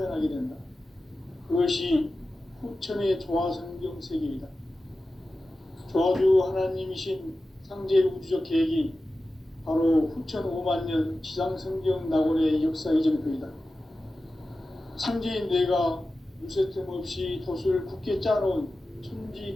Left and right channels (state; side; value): normal; both; correlation 0.94